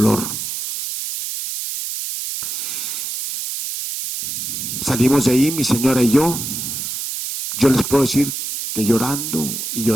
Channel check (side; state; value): right; noise; hiss, 5 dB below the sound